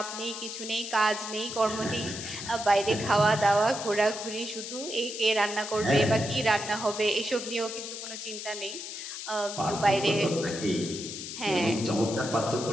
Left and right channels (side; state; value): left; noise; hiss, 8 dB below the sound